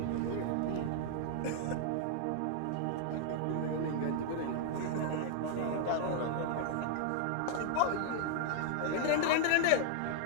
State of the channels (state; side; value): different; both; correlation 0.00